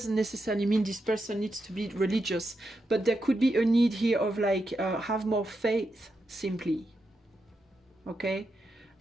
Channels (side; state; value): both; normal; correlation 0.86